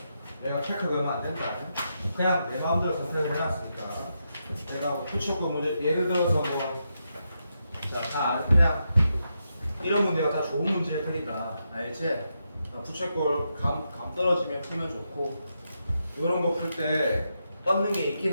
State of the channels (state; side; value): inverted; both; correlation -0.84